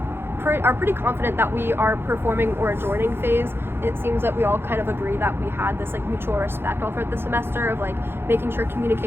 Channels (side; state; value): left; late; 0.11 ms